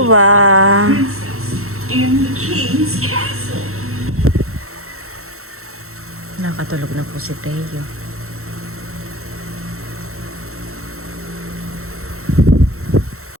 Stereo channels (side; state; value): left; late; 0.63 ms